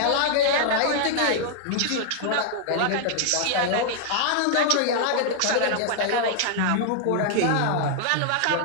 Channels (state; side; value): different; both; correlation 0.00